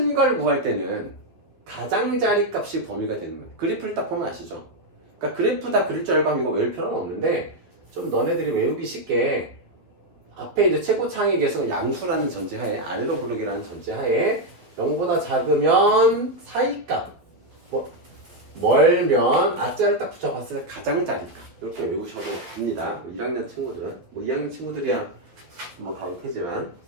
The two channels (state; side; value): late; left; 11 ms